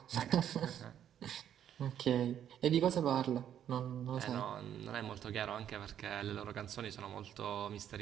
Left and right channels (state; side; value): quieter; left; 10.0 dB